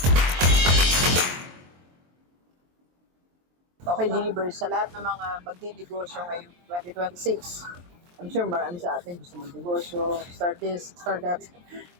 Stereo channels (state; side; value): late; left; 23 ms